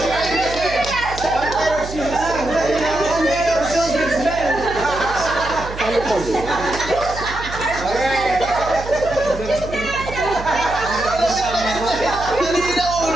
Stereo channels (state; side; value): noise; right; hum, 11 dB below the sound